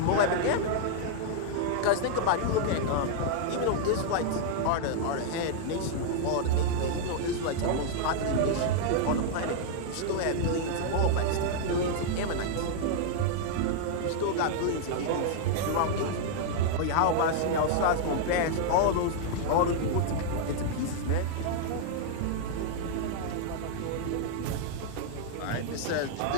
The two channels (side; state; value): both; different; correlation -0.01